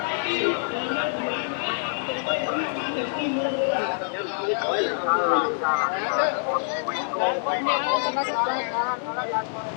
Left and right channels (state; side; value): silent; right; 61 dB below the other